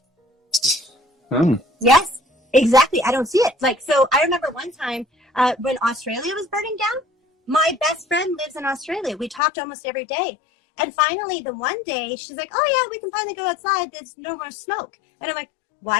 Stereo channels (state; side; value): drops out; right; at 9.4 s